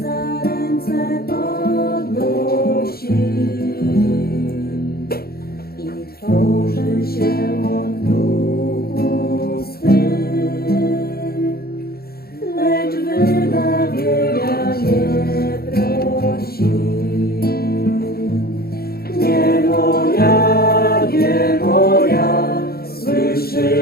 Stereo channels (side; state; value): right; late; 0.45 ms